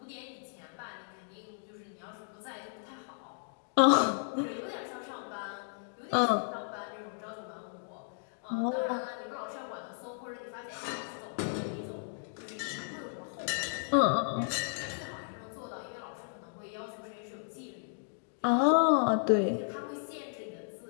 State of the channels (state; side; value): silent; right; digital silence